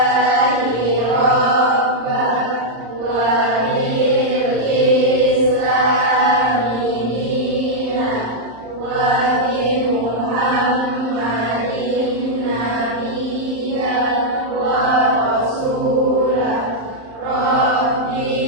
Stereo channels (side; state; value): left; late; 35 ms